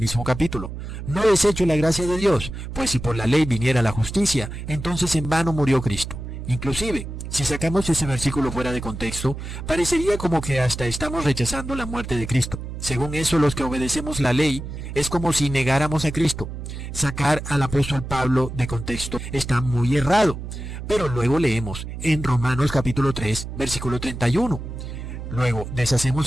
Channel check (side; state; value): right; noise; hum, 8 dB below the sound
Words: capítulo. No desecho la gracia de Dios, pues si por la ley viniera la justicia, entonces en vano murió Cristo. Inclusive, si sacamos ese versículo fuera de contexto, parecería como que hasta estamos rechazando la muerte de Cristo. Según eso, los que obedecemos la ley es como si negáramos a Cristo. Sacar al apóstol Pablo de contexto está muy errado. Pero luego leemos en Romanos capítulo 3, versículo 31. Luego,